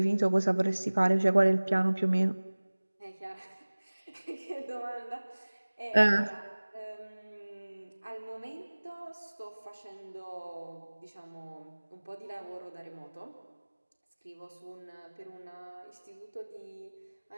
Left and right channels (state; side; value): inverted; both; correlation -1.00